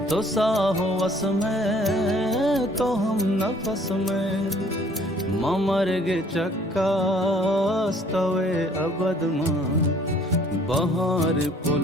तो साहो वस में तो हम नफस में ममरगे चक्का स्तवे अबद मां बहार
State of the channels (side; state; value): both; normal; correlation 0.58